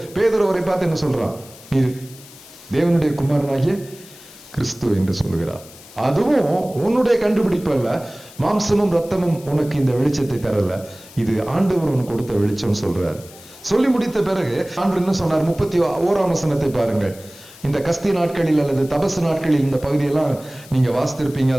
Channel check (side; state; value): left; noise; hiss, 20 dB below the sound